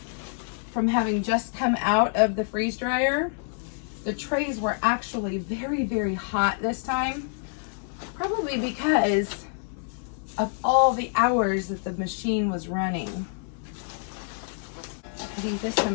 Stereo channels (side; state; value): right; silent; digital silence